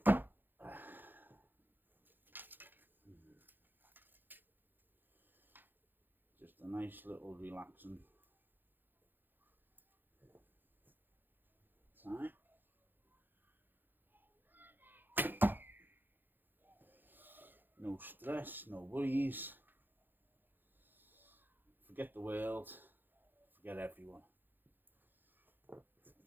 Just a nice little relaxing time. No stress, no worries. Forget the world, forget everyone.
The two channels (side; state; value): left; late; 0.092 ms